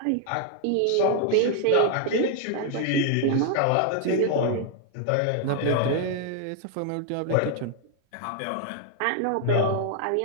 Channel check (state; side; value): different; both; correlation 0.00